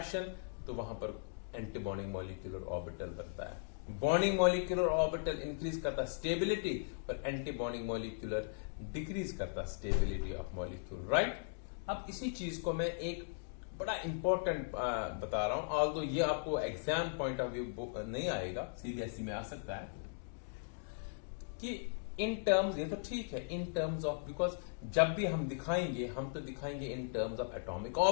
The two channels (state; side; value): silent; right; digital silence